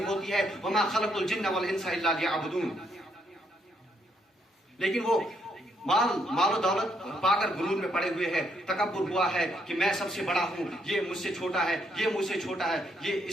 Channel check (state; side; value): normal; both; correlation 0.73